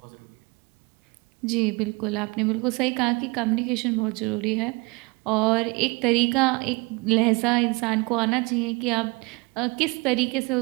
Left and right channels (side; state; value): left; quieter; 27.2 dB